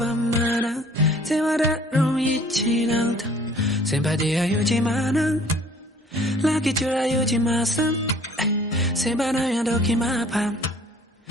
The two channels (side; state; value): both; normal; correlation 0.54